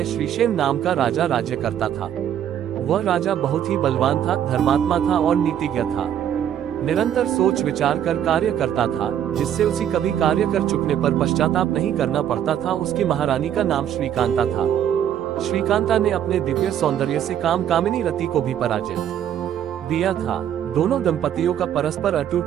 श्रीशेन नाम का राजा राज्य करता था। वह राजा बहुत ही बलवान था, धर्मात्मा था और नीतिज्ञ था। निरंतर सोच विचार कर कार्य करता था, जिससे उसे कभी कार्य कर चुकने पर पश्चाताप नहीं करना पड़ता था। उसकी महारानी का नाम श्रीकांता था। श्रीकांता ने अपने दिव्य सौंदर्य से काम कामिनी रति को भी पराजित दिया था। दोनों दंपतियों का परस्पर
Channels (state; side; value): quieter; left; 10.1 dB